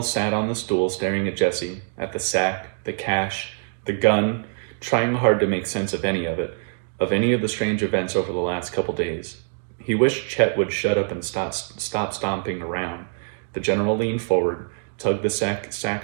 sat on the stool staring at Jesse, at the sack, the cash, the gun, trying hard to make sense of any of it, of any of the strange events over the last couple days. He wished Chet would shut up and stop stomping around. The general leaned forward, tugged the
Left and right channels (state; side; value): silent; left; digital silence